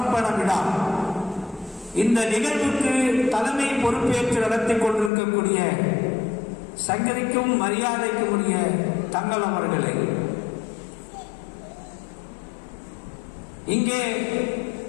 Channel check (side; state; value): right; drops out; at 5.1 s